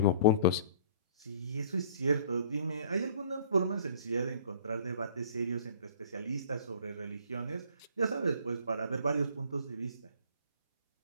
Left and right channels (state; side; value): inverted; both; correlation -0.51